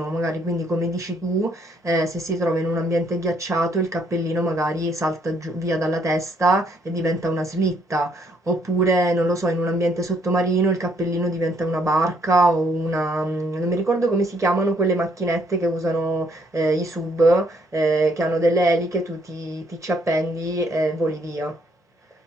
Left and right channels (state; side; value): normal; both; correlation 0.68